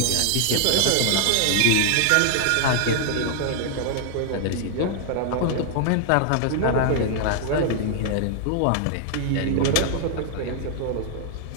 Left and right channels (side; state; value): both; different; correlation 0.00